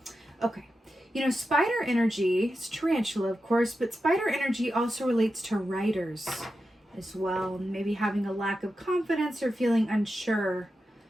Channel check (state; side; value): normal; both; correlation 0.90